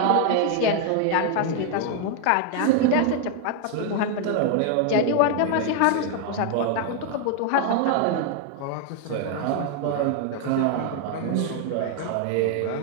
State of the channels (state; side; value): different; both; correlation 0.00